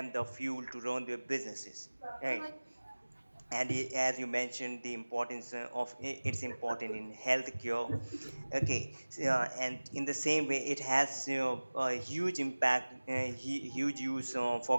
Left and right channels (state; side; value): inverted; both; correlation -1.00